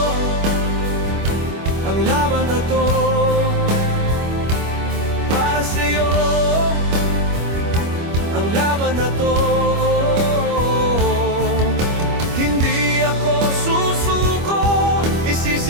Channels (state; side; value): late; left; 25 ms